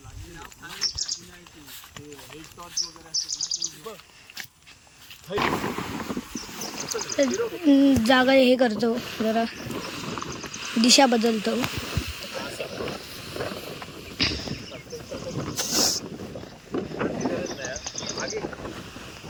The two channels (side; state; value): both; identical; correlation 1.00